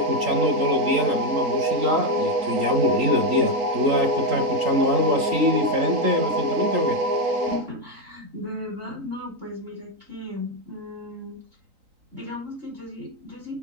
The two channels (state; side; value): late; left; 3.8 ms